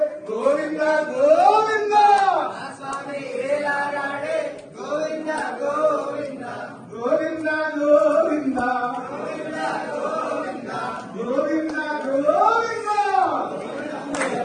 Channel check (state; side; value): identical; both; correlation 1.00